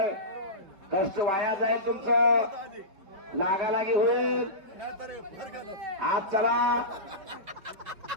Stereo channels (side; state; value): left; late; 5.2 ms